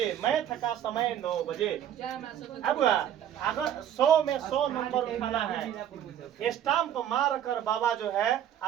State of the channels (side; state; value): left; quieter; 10.3 dB